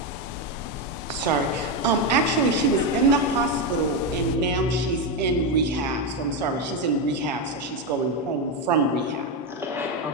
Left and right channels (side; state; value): both; normal; correlation 0.08